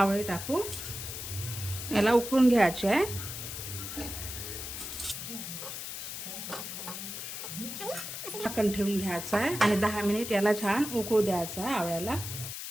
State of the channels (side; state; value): left; noise; hiss, 7 dB below the sound